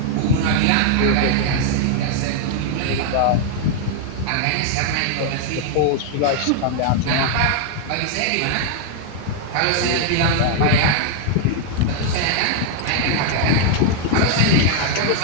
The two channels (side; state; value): both; different; correlation 0.00